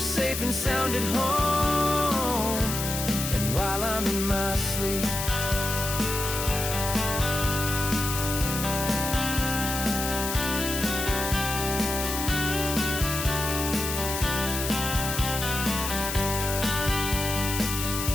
and sound at home, and while I'm in my sleep.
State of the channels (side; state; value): left; noise; hiss, 4 dB below the sound